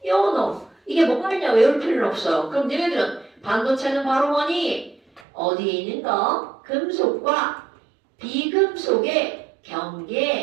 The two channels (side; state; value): left; drops out; at 5.2 s